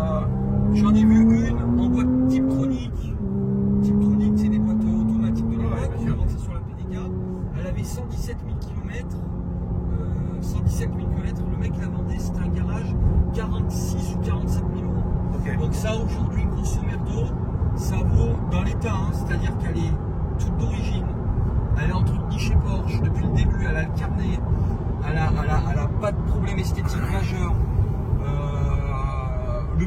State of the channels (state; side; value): identical; both; correlation 1.00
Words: j'en ai vu une en boîte Tiptronic. Tiptronic, c'est des boîtes automatiques de l'époque. bien sûr. C'est sur la PDK. Elle avait 117 000 km. 117 000 km. Le mec la vendait, c'était un garage 46 ou 47 000 euros. Ok. Donc ça, aujourd'hui, grosso merdo, ça vaut dans l'état, hein, c'est-à-dire qu'elle est toute d'origine. Elle est entretenue chez Porsche depuis le début, elle a le carnet, elle a pas de problème esthétique majeur. Le